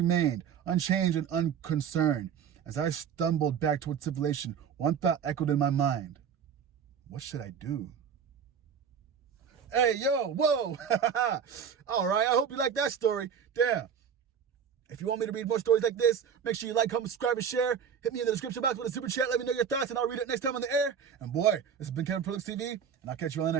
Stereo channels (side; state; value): left; quieter; 7.5 dB